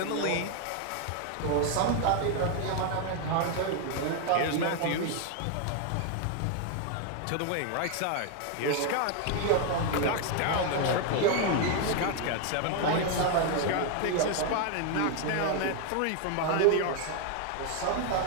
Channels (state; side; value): different; both; correlation 0.01